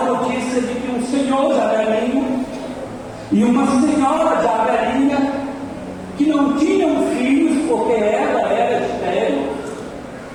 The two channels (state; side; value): identical; both; correlation 1.00